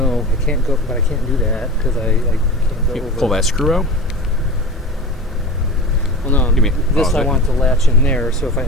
I can't go, but I can't do that because I can't go You over. pull that screw out. Well, no, this I want to latch in there, so if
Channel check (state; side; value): normal; both; correlation 0.32